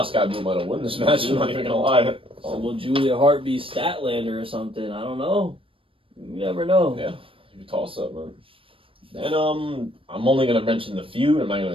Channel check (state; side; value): late; left; 0.26 ms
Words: Sky Blue might have won this match. I'm not even gonna lie. So will Julia Hart be Statlander or something? I don't know. You never know. Yeah, you toss up, man. Then I'm only gonna mention the feud. I'm not